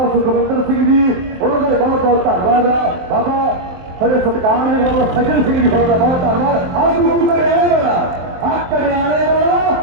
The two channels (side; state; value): left; late; 23 ms